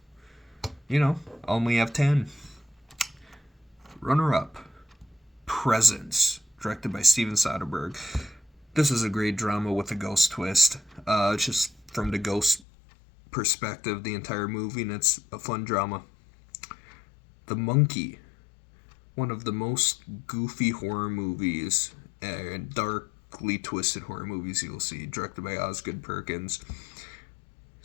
only have 10. Runner up Presence, directed by Steven Soderbergh. This is a great drama with a ghost twist. Just from the ghost perspective, the entire movie, and it's a fun drama. The Monkey, one of the most goofy horror movies and darkly twisted horror movies you'll see, directed by Osgood Perkins.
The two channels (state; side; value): drops out; right; at 12.6 s